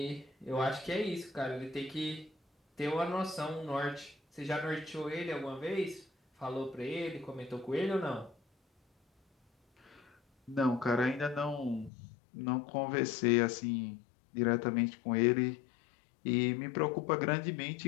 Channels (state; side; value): drops out; right; at 11.9 s